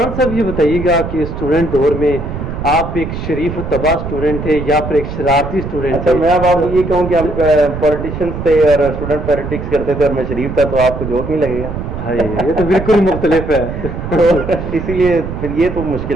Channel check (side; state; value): right; noise; rumble, 6 dB below the sound